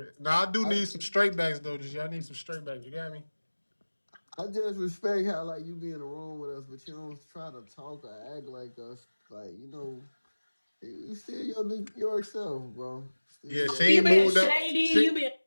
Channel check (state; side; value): inverted; both; correlation -1.00